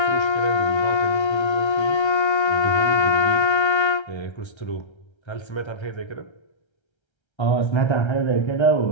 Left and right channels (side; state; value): right; late; 1.3 ms